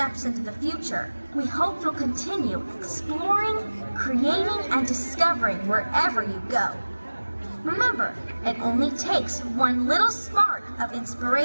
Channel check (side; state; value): both; inverted; correlation -1.00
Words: into the future, we hope you'll continue exploring, creating, and discovering wherever you go. Remember, it only takes one little spark of